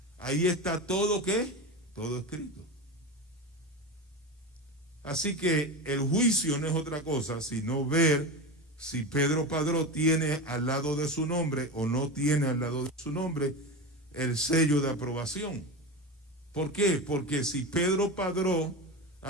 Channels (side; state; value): both; normal; correlation 0.23